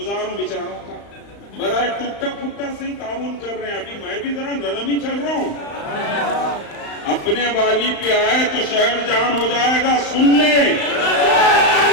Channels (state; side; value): late; right; 35 ms